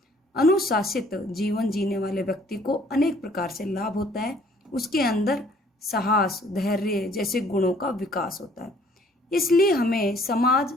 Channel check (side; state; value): both; normal; correlation 0.59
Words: अनुशासित जीवन जीने वाले व्यक्ति को अनेक प्रकार से लाभ होता है। उसके अंदर साहस, धैर्य जैसे गुणों का विकास होता है। इसलिए हमें समाज,